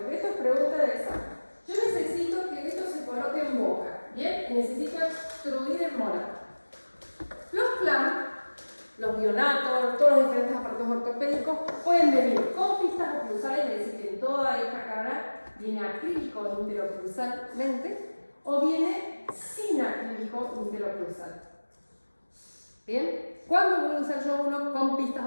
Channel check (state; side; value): inverted; both; correlation -1.00